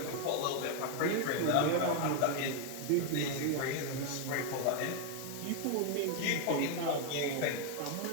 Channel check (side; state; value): both; different; correlation 0.01